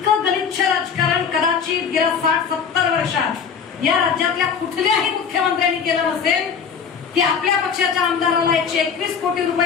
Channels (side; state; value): right; quieter; 6.7 dB